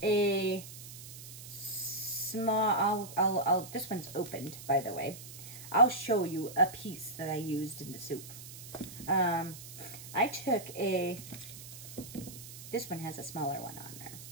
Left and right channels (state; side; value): noise; right; hiss, 13 dB below the sound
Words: a small, this one's opened, by the way. I'll show you a piece that I used in the soup. I took this one has a smaller one on there.